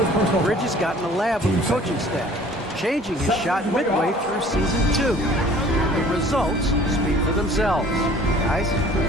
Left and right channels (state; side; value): normal; both; correlation 0.51